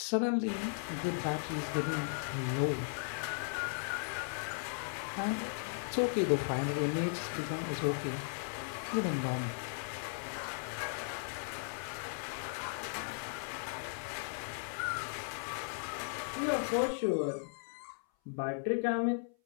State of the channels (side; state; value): right; silent; 53 dB below the other